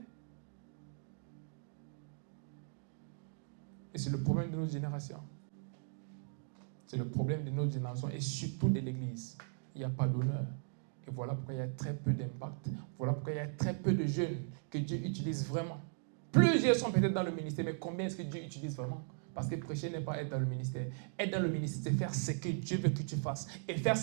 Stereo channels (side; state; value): left; silent; digital silence